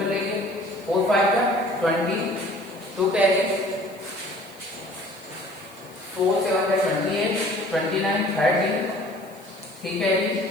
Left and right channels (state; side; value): noise; left; hiss, 25 dB below the sound